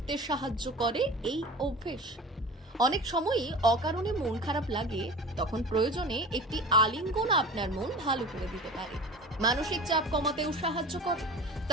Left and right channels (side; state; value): both; normal; correlation 0.36